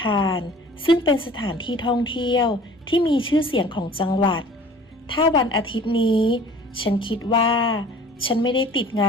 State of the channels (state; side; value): normal; both; correlation 0.48